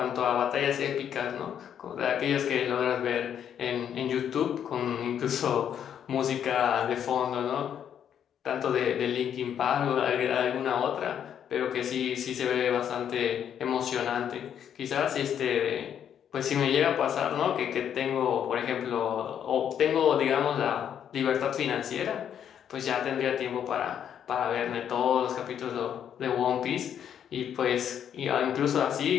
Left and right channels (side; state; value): right; quieter; 9.0 dB